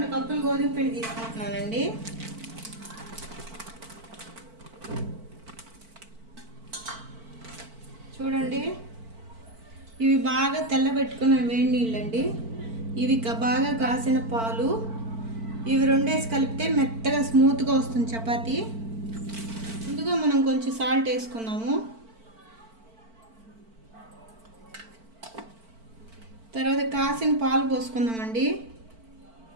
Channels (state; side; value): late; left; 4.5 ms